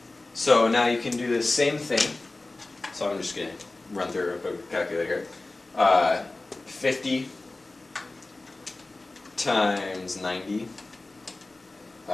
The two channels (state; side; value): quieter; right; 3.1 dB